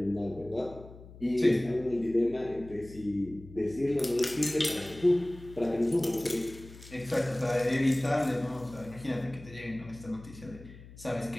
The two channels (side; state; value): left; noise; hum, 18 dB below the sound